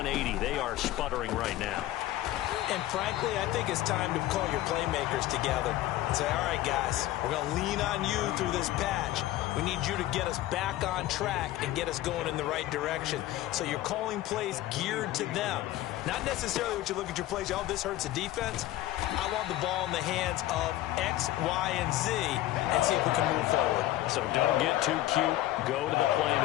They are sputtering right now. And frankly, I think it's time to call your playmakers together and say, all right, guys, we're going to lean on you through this patch. We need you to get us back on track and get us going in the right direction. So you're calling plays geared to them. Not necessarily what you look at your plays, oh, this hurts the defense. I want the ball in the hands of X, Y, and Z and see if we can move forward. So don't get too cute. Go to the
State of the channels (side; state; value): right; quieter; 15.0 dB